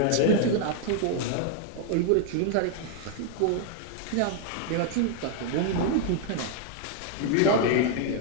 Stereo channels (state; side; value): different; both; correlation 0.00